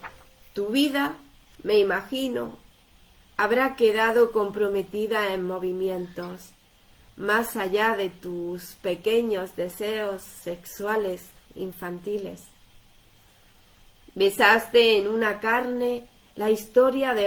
Tu vida, me imagino, habrá quedado comprometida en movimientos, más allá de tus pequeños deseos sexuales infantiles. Besaste en una carne la historia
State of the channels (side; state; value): both; identical; correlation 1.00